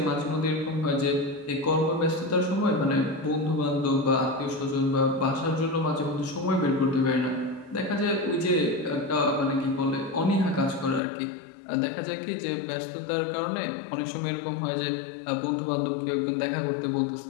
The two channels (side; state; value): right; drops out; at 11.0 s